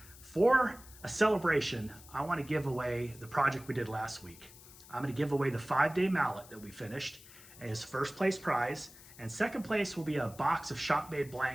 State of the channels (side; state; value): left; noise; hiss, 20 dB below the sound